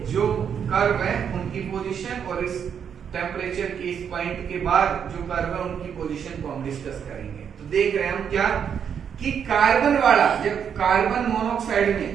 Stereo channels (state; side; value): quieter; left; 7.8 dB